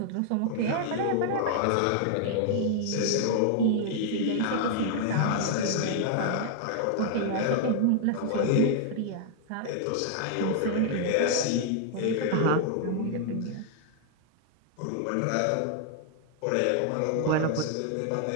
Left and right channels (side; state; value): both; different; correlation 0.00